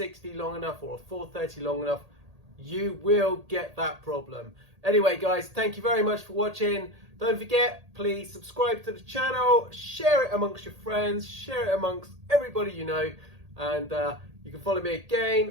long enough or a 430 long enough, you will get that problem. Anyway guys, thank you very much for watching. Don't forget, please subscribe to the channel, share it amongst your friends, share it amongst everybody you know, and you can follow me again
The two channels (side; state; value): left; late; 1.8 ms